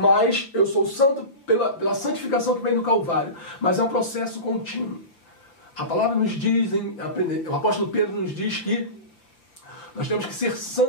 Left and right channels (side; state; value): right; late; 5.5 ms